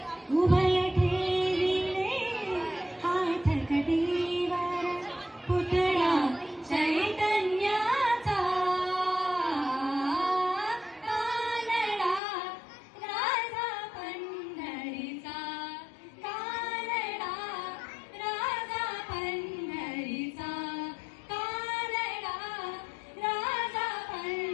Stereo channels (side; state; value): right; drops out; at 12.2 s